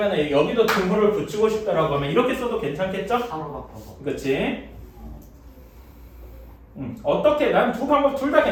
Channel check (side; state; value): both; identical; correlation 1.00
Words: 여기도 등호를 붙이고 싶다라고 하면 이렇게 써도 괜찮겠죠? 3으로 바꿔서. 그치? 어떻게 난 두 방법 둘 다